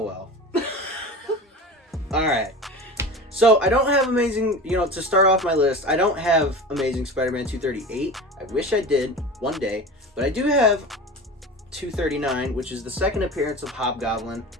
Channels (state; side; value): normal; both; correlation 0.32